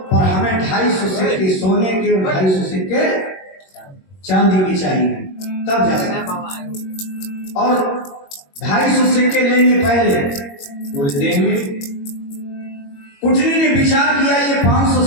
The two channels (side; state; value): right; late; 21 ms